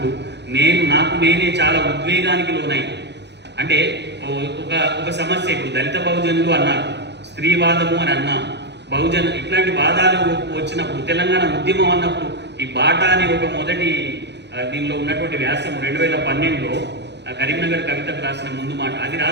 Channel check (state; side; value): late; left; 0.50 ms